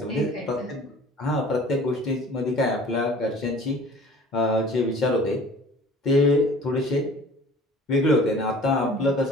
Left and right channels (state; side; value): normal; both; correlation 0.46